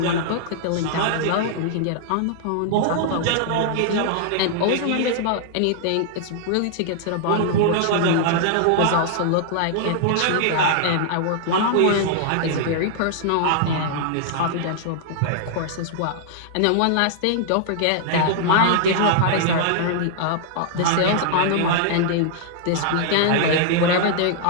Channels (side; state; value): both; different; correlation -0.01